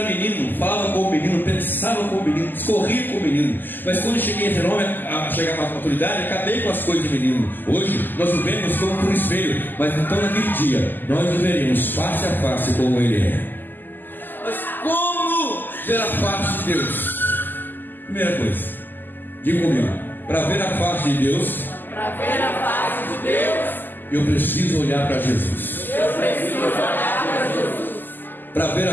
menino, falava com o menino, pensava com o menino, discorria com o menino. Mas quando cheguei a ser homem, a chegar à maturidade, acabei com as coisas de menino. Hoje nós vivemos como por espelho, mas então naquele dia nós veremos face a face como ele é. Mas como ver a face de Deus? Primeira coisa, diga comigo: para ver a face de Deus, eu preciso olhar para Jesus. Para ver a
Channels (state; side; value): late; right; 0.090 ms